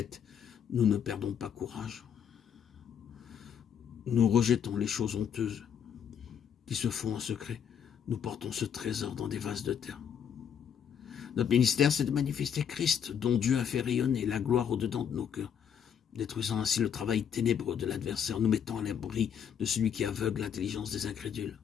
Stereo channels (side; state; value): right; quieter; 8.2 dB